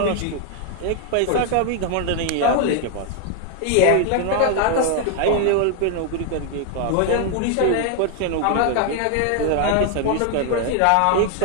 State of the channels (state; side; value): different; both; correlation 0.00